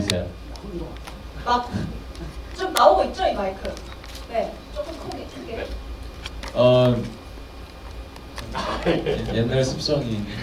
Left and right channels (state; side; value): identical; both; correlation 1.00